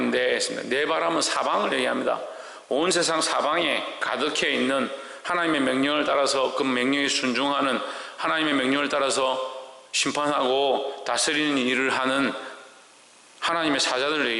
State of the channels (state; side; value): identical; both; correlation 1.00